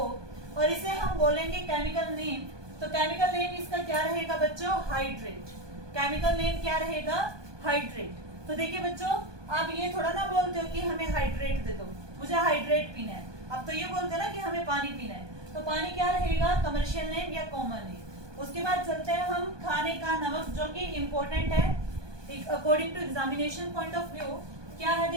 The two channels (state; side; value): late; left; 1.2 ms